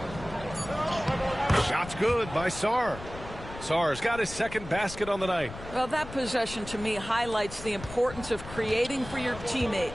Shot's good by Sarr. Sarr's got his second basket on the night. Well, that possession to me highlights the importance of creating for your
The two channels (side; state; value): left; noise; rumble, 13 dB below the sound